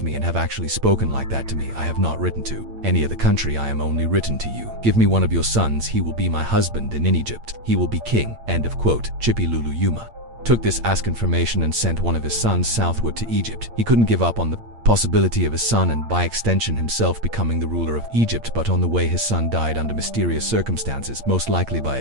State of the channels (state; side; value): late; left; 8.8 ms